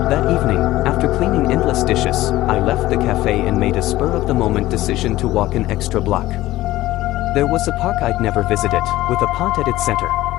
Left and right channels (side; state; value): right; quieter; 16.3 dB